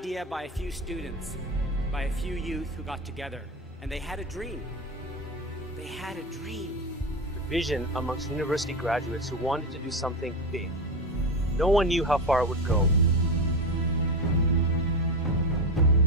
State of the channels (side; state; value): both; normal; correlation 0.17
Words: by a few students, by a few youth who got together, and they had a dream. They had a dream. Vision amongst university graduates who wanted to do something big. No one knew how far it would go.